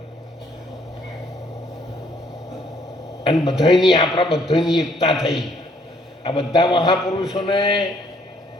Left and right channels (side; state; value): both; normal; correlation 0.65